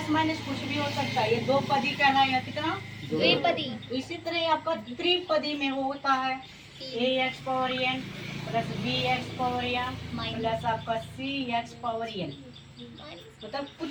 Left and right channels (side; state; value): both; identical; correlation 1.00